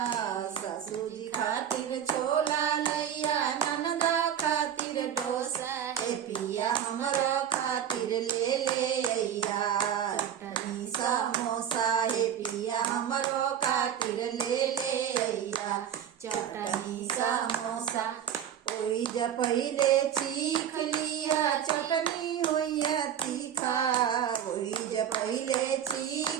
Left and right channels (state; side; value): quieter; left; 9.4 dB